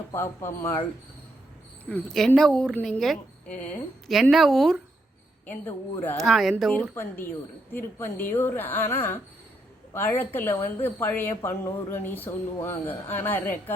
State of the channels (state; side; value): normal; both; correlation 0.78